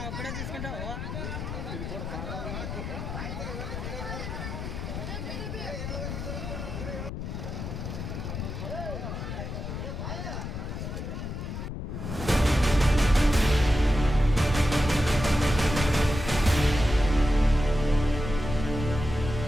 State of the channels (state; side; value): noise; left; rumble, 6 dB below the sound